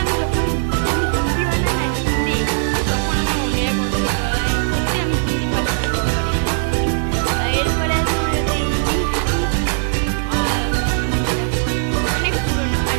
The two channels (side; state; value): left; silent; 67 dB below the other